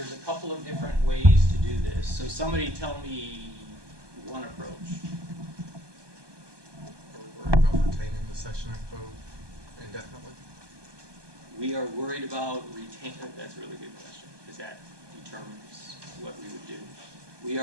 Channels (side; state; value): left; late; 1.2 ms